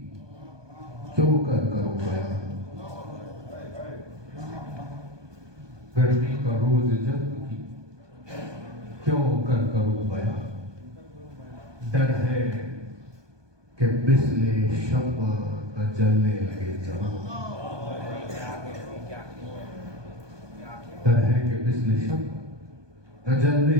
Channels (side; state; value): left; late; 1.2 ms